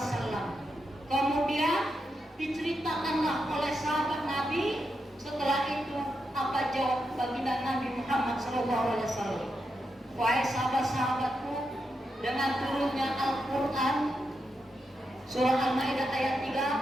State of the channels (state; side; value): normal; both; correlation 0.85